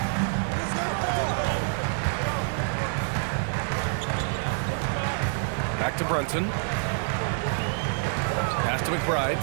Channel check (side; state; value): left; silent; 60 dB below the other